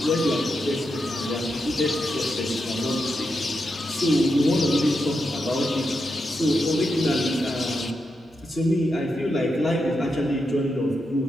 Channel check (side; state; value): both; normal; correlation 0.85